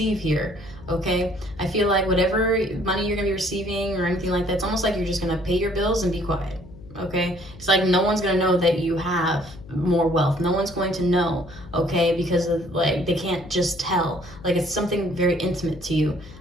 here, okay? I feel like whatever money you're going to be receiving or anything like that, it's almost like you're just going to pay your bills and be quiet, okay? It's like no one's going to know that you have more wealth. No one's going to know, okay? Because of, like, they can't just tell. Like, it's something very intimate to you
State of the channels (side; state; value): left; noise; hum, 18 dB below the sound